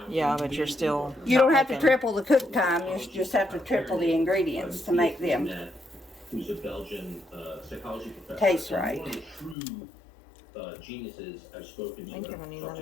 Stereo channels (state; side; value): drops out; right; at 9.6 s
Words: Yeah, but you're still. You don't have to making- triple the cook time. You just have to triple the ingredients to make them. Who's a Belgian psychology professor. Taste right. One of the true geniuses I've spoken to. I think you're gonna need